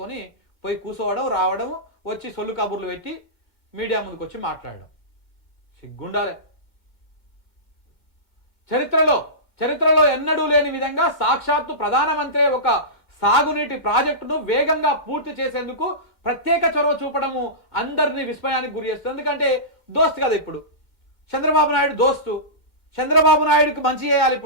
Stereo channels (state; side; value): late; right; 2.1 ms